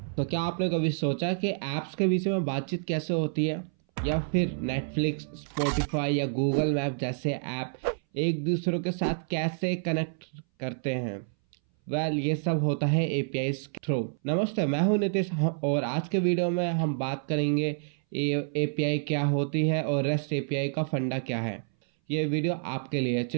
तो क्या आपने कभी सोचा कि ऐप्स के बीच में बातचीत कैसे होती है, या फिर नेटफ्लिक्स, स्पॉटिफाई या गूगल मैप जैसे ऐप एक दूसरे के साथ कैसे कनेक्ट करते हैं? ये सब होता है एपीआई के थ्रू। नमस्ते, मैं हूं नितिश और आज के वीडियो में हम बात करेंगे एपीआई क्या होती है और रेस्ट एपीआई का फंडा क्या है। ये वीडियो आपके लिए।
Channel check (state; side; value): silent; left; 59 dB below the other